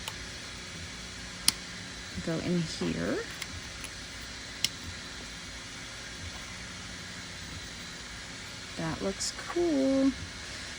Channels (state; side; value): identical; both; correlation 1.00